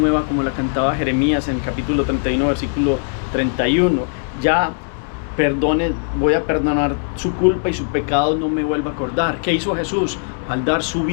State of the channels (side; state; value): right; silent; 63 dB below the other